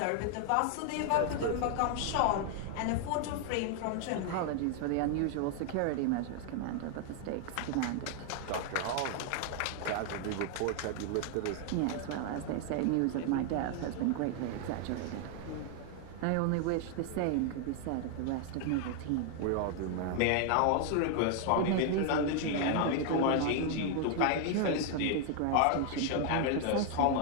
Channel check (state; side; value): different; both; correlation 0.00